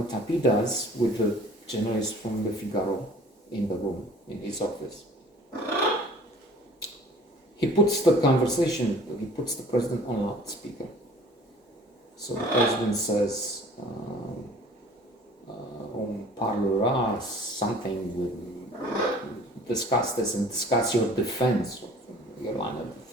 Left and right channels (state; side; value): normal; both; correlation 0.50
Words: Tapie does with the journalist from Le Figaro in the room, in his office, he puts the president on loudspeaker. So the president says, on parlera something, we'll discuss this and discuss your defense, your line of